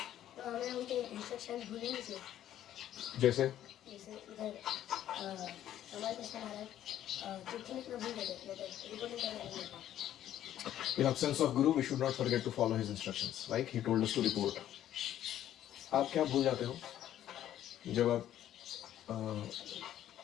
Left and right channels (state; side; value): quieter; right; 11.8 dB